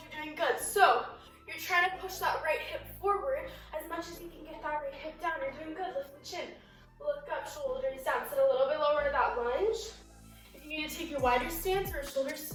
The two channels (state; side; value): identical; both; correlation 1.00